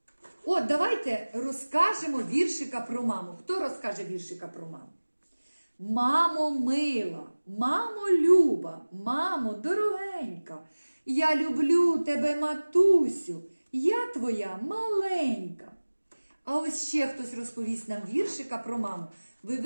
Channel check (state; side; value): inverted; both; correlation -1.00